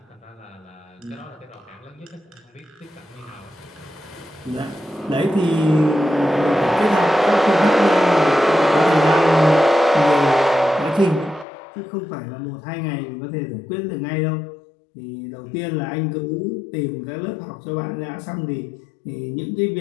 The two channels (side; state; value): right; drops out; at 11.5 s